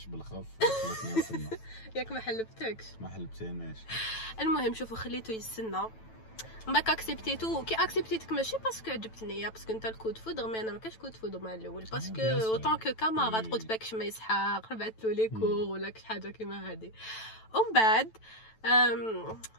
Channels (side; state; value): right; late; 9.1 ms